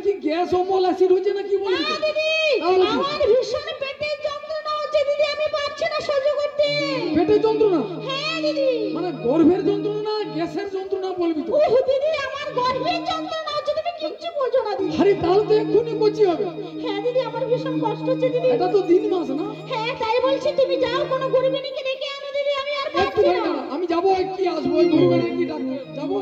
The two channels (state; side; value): identical; both; correlation 1.00